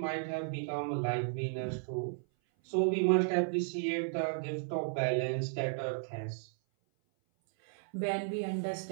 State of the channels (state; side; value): silent; left; 55 dB below the other